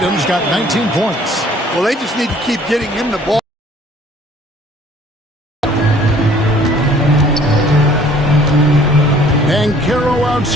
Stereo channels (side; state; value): both; normal; correlation 0.56